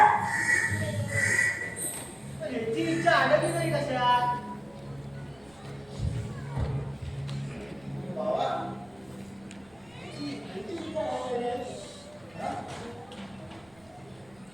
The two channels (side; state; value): right; noise; rumble, 28 dB below the sound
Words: याची इच्छा आडली नाही कशात बाबा